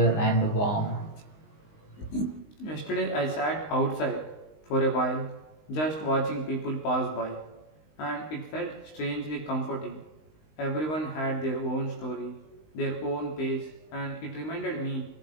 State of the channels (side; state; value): right; late; 19 ms